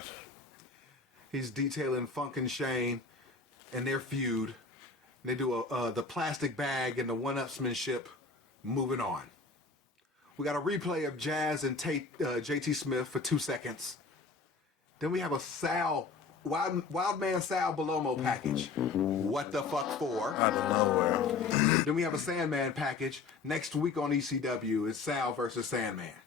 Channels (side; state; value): right; quieter; 4.4 dB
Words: He's detailing Funk and Shane and their feud. They do the plastic bag and the one-upsmanship. Moving on. We got a replay of Jazz and JT Smith for 2 seconds. Then we have a Wild Man Sal Belomo package. What the fuck for? Out of nowhere. Then we have a Sandman package. Next week on ECW is Sal versus Sandman.